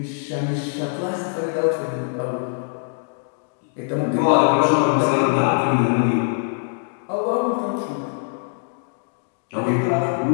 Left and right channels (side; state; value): right; silent; digital silence